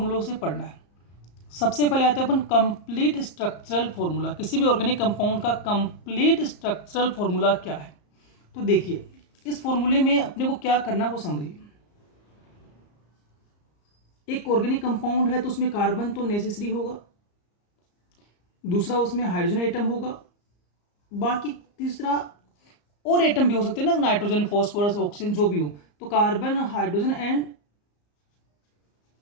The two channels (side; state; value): right; late; 34 ms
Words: से पढ़ना है। सबसे पहले आते हैं अपन कंप्लीट स्ट्रक्चरल फॉर्मूला। किसी भी ऑर्गेनिक कंपाउंड का कंप्लीट स्ट्रक्चरल फॉर्मूला क्या है, तो देखिए इस फॉर्मूले में अपने को क्या करना वो समझिए। एक ऑर्गेनिक कंपाउंड है तो उसमें कार्बन तो नेसेसरी होगा, दूसरा उसमें हाइड्रोजन एटम होगा, बाकी तीसरा और एटम भी हो सकते हैं ना, नाइट्रोजन, फॉस्फोरस, ऑक्सीजन जो भी हो। तो carbon, hydrogen and